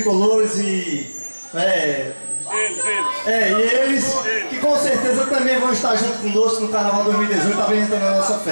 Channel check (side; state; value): both; inverted; correlation -1.00